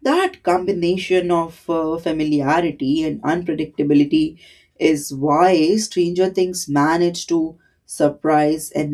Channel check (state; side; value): identical; both; correlation 1.00